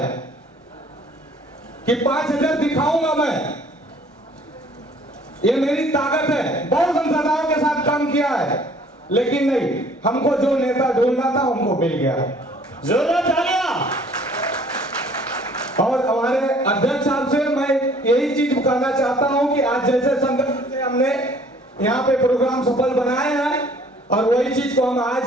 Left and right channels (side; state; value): both; normal; correlation 0.56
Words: कि 5000 दिखाऊंगा मैं। ये मेरी ताकत है। बहुत संसाधनों के साथ काम किया है, लेकिन नहीं, हमको जो नेता ढूंढना था हमको मिल गया। जोरदार तालियां। और हमारे अध्यक्ष साहब से मैं यही चीज कहना चाहता हूं कि आज जैसे संगठन से हमने यहाँ पे प्रोग्राम सफल बनाए हैं, और वही चीज को हम आज